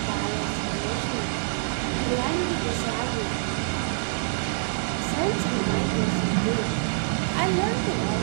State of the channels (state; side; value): silent; left; digital silence